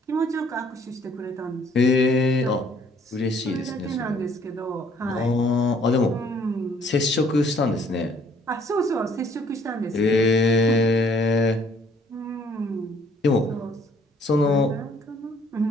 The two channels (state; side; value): normal; both; correlation 0.62